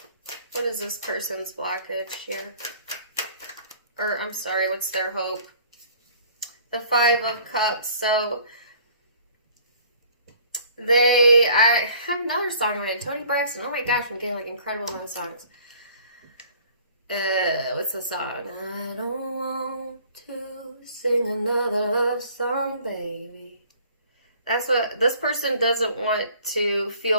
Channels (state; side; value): inverted; both; correlation -0.53